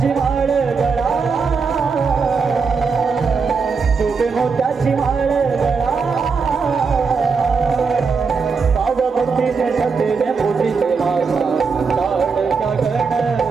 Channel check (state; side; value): quieter; left; 5.1 dB